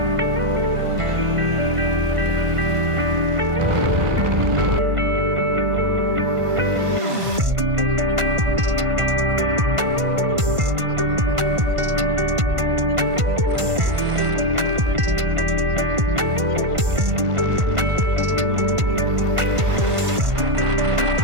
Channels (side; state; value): left; late; 1.5 ms